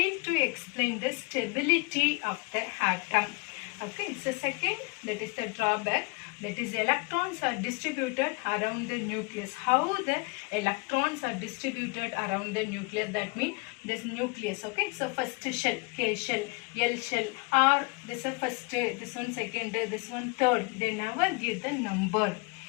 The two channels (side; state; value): right; quieter; 30.2 dB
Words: to explain the stability of the atom. Okay, so second, that is the drawback, that is electrons are distributed around the nucleus. How the electrons are distributed around the nucleus, that means this nucleus. Okay, so first shell, K shell, L shell, or this is first, this one second, this one third. They never give the number.